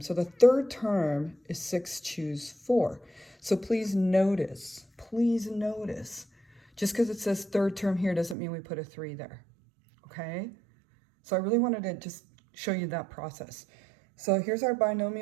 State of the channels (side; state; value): left; drops out; at 8.3 s